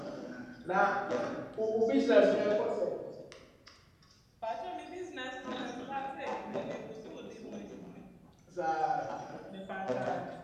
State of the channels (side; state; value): both; identical; correlation 1.00